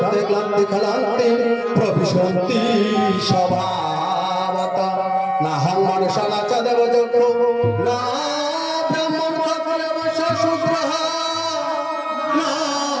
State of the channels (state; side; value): identical; both; correlation 1.00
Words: ক্লান্তি খলান্তি প্রবিশন্তি স্বভাবত নাহং মনুষ্যনা চ দেবযক্ষো না ব্রাহ্মণ ক্ষত্রিয় বৈশ্য শূদ্রঃ না